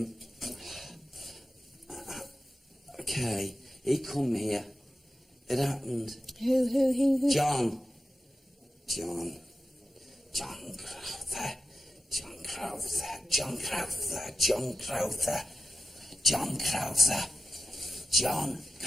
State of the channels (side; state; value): both; normal; correlation 0.92